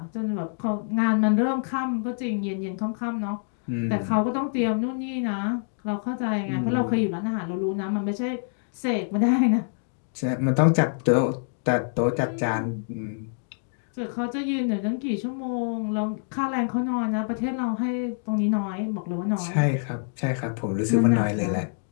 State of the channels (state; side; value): silent; right; digital silence